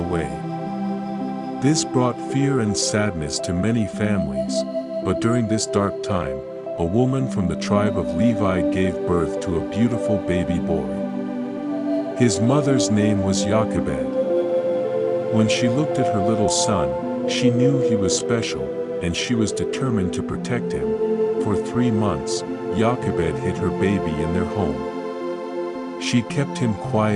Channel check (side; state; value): both; identical; correlation 1.00